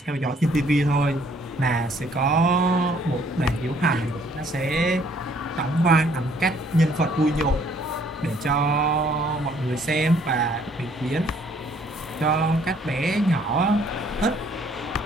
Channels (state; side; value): normal; both; correlation 0.63